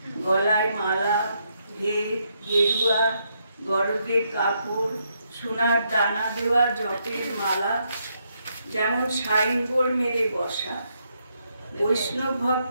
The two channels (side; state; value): both; inverted; correlation -0.77